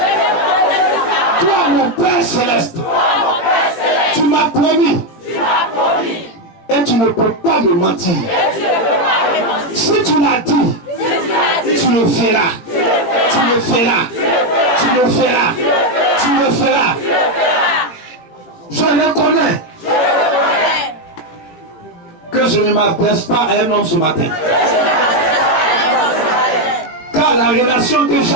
Toi, mon Père Céleste, tu m'as promis. Et tu ne peux pas me mentir. Si tu l'as dit, tu le feras. Tu le feras. Tu le feras. Tu le feras. Je reconnais que je ne m'adresse pas à un homme ce matin. Car la relation que j'ai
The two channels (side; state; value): right; late; 18 ms